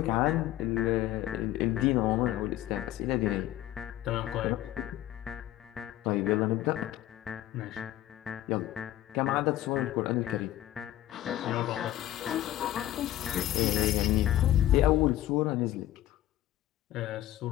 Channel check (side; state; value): right; quieter; 13.8 dB